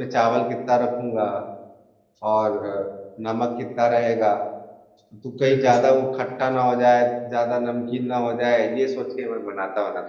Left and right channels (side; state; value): both; identical; correlation 1.00